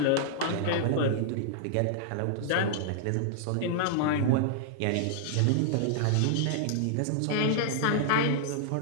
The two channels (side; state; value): both; different; correlation -0.01